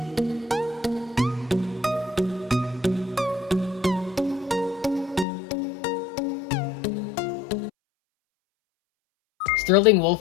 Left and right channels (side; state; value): right; drops out; at 5.2 s